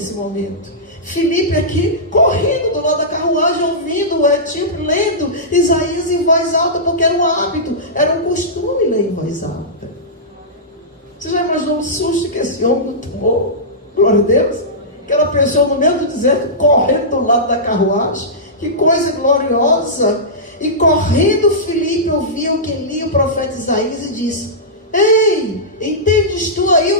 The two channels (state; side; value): normal; both; correlation -0.15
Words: momento? Filipe aqui, correndo do lado da carruagem, ouvindo o etíope, lendo Isaías em voz alta, porque era um hábito, era um costume ler em voz alta. Você já imaginou o susto que esse homem tomou? Glória a Deus. Aquela pessoa no meio do deserto, correndo do lado da carruagem. Que coisa gloriosa. E correndo Filipe ouvia o que lia o profeta Isaías e disse: ei, entendes tu aí